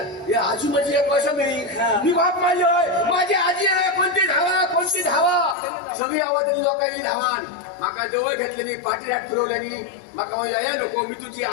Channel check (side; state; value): right; drops out; at 5.6 s